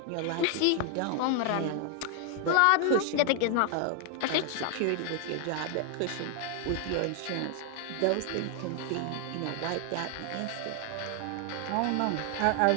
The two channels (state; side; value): different; both; correlation 0.00